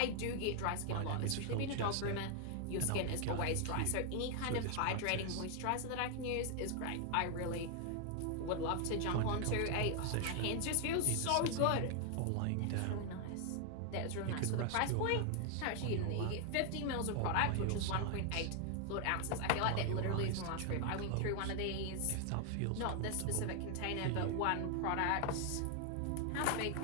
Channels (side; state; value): both; different; correlation 0.00